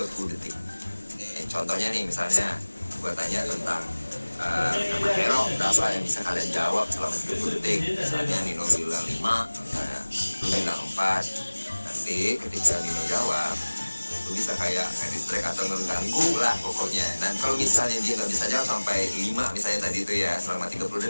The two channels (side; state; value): both; inverted; correlation -1.00